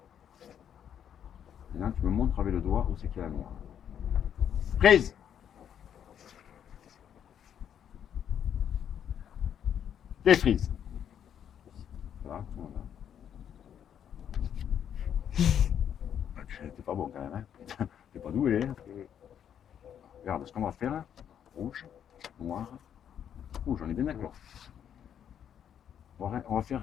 Maintenant tu me montres avec le doigt où c'est qu'il y a la noire. Prise! Défrise. Voilà, tout le monde là. T'es pas bon quand même, hein? T'es pas doué, hein? Regarde ce qu'on va faire. Rouge, noir, rouge, on est bien d'accord. On va faire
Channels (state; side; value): quieter; right; 9.0 dB